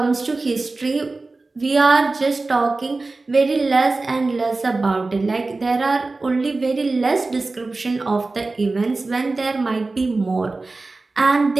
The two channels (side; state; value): left; quieter; 3.5 dB